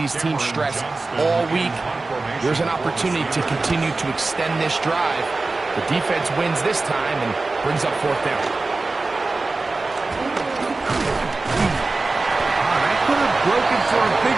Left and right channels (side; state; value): left; quieter; 3.5 dB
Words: teams stress all week. There's an opportunity to continue to extend this drive. The defense wins this time and brings up 4th down. That could have broken for a